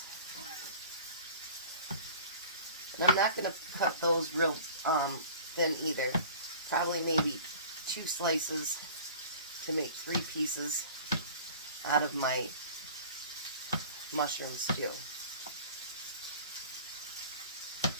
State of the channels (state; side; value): inverted; both; correlation -0.45